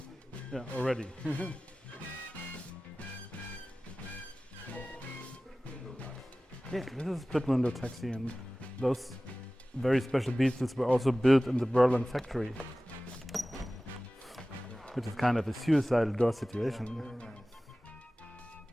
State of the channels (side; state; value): both; normal; correlation 0.97